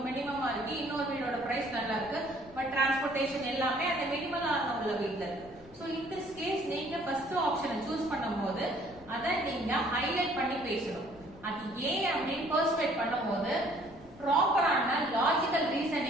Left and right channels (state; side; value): noise; left; rumble, 21 dB below the sound